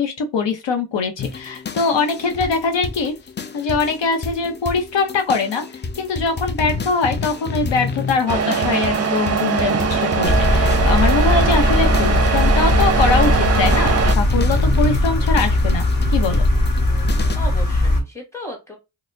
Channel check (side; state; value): both; normal; correlation 0.41